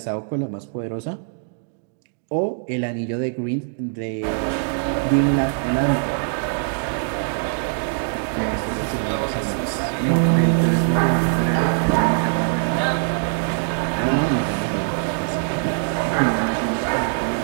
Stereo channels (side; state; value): left; silent; digital silence